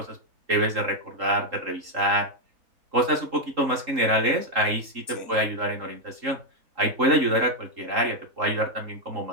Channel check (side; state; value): left; late; 3.7 ms